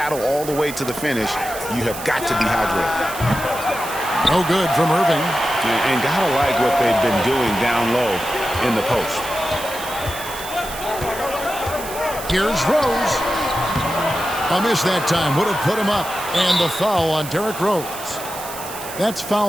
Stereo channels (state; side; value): noise; right; hiss, 11 dB below the sound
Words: all the way to the finish, you have got to be hydrated. No good from Irving. And gotta like what they've been doing down low in the post. Here's Rose. A miss that time would have put him up. And the foul on Derrick Rose. That's